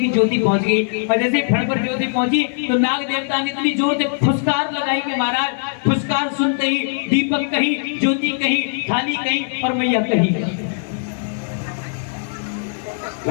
ज्योति पहुंच गई। और जैसे फण पर ज्योति पहुंची तो नाग देवता ने इतनी जोर से फुसकार लगाई कि महाराज फुसकार सुनते ही दीपक कहीं, ज्योति कहीं, थाली कहीं और मैया कहीं।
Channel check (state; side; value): silent; right; digital silence